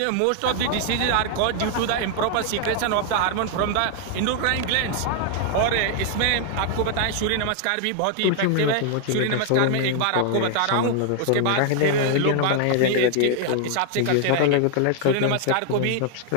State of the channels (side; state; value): both; different; correlation 0.00